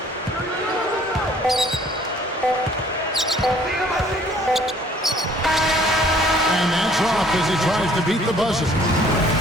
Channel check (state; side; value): normal; both; correlation 0.57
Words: that's off as he tries to beat the buzzer.